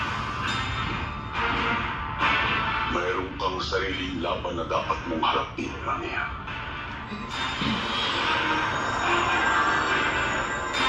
mayroon kang sariling laban na dapat mong harapin, Amiya.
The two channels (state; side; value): identical; both; correlation 1.00